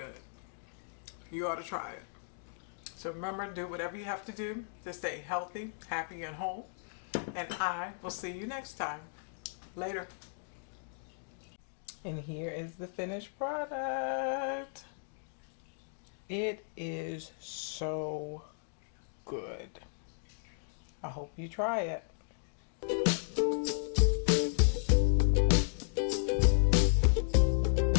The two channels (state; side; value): silent; right; digital silence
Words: You ought to try it. So remember, do whatever you have to do to stay healthy, happy, and whole. And I will see you next time. Later. And here is the finished product. It is so good. I hope you try it.